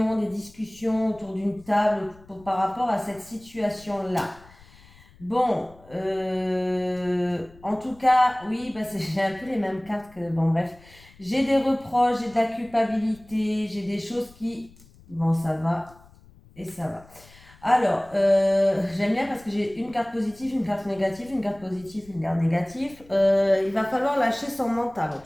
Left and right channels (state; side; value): noise; left; rumble, 25 dB below the sound